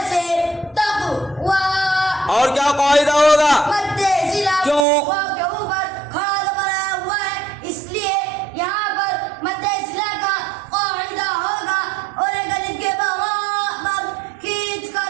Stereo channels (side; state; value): left; drops out; at 4.9 s